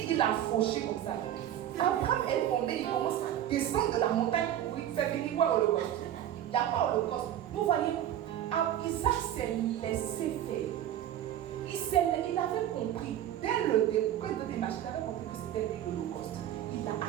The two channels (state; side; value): quieter; left; 11.4 dB